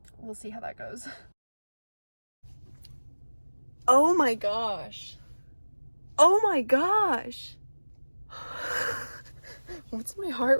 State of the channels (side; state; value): both; inverted; correlation -1.00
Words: We'll see how that goes. Oh my gosh. Oh my gosh. What's my heart